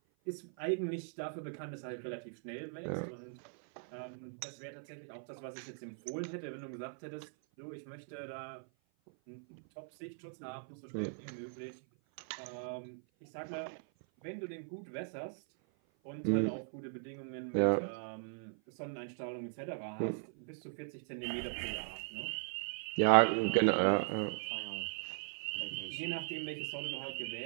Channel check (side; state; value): left; silent; 52 dB below the other